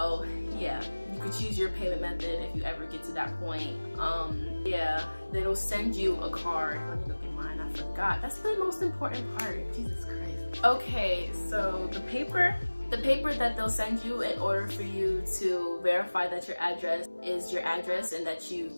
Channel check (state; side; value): inverted; both; correlation -1.00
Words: yeah, you could choose your payment method if you ever get to that point. Yeah, they'll send you a card. Let me look at mine, I forgot. That's the most important part, Jesus Christ. Okay, so the paper that they'll send you in order for you to verify that your address is your address and that you